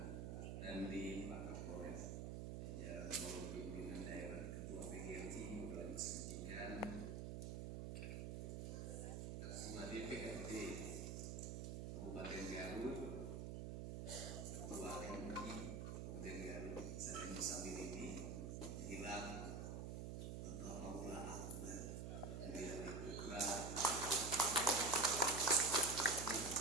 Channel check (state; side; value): noise; right; hum, 4 dB below the sound